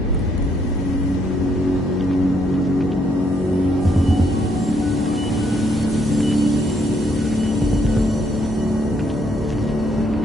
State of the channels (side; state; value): both; normal; correlation 0.72